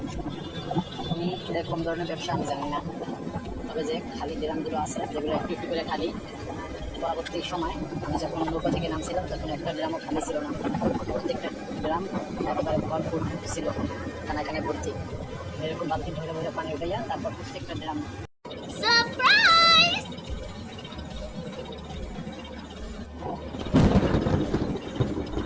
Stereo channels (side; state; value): both; identical; correlation 1.00